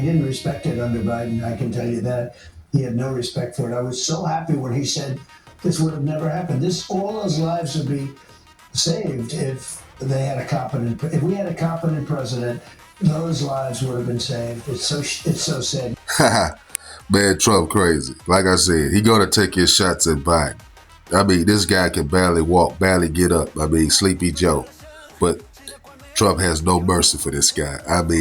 respect it under Biden, I can tell you that. He had no respect for it. I was so happy when he said this would have never happened. All those lives would be saved if we had a competent president. Those lives would have been saved. It's so sad. Man, Trump crazy. Like I said, he gonna take his shots at Biden. I mean, this guy can barely walk, barely get up. I mean, Sleepy Joe. But Trump has no mercy for this guy. I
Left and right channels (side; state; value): both; identical; correlation 1.00